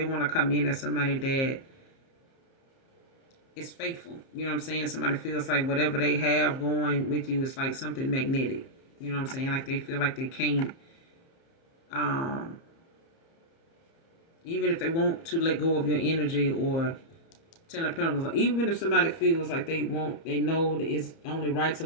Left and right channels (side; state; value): right; late; 30 ms